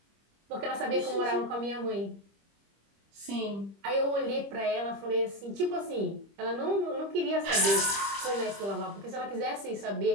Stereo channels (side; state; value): left; late; 25 ms